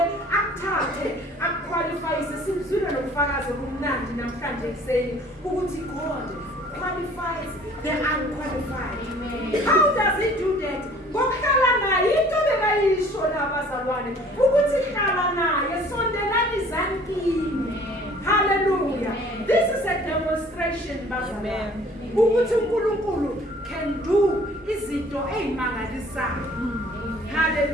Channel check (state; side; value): normal; both; correlation 0.53